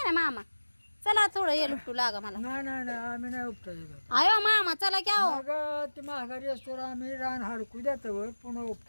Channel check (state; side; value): inverted; both; correlation -1.00